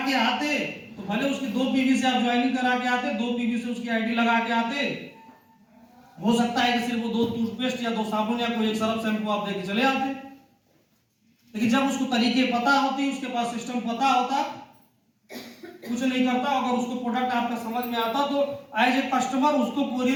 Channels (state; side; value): identical; both; correlation 1.00